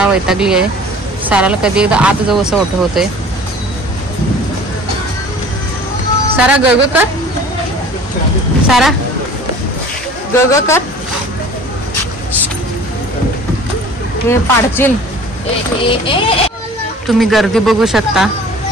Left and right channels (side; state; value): both; normal; correlation 0.46